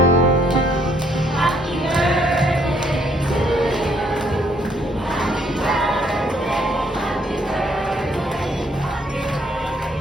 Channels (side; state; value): both; normal; correlation 0.68